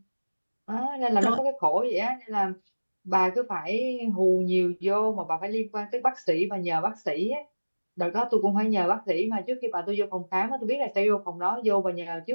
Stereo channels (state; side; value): inverted; both; correlation -1.00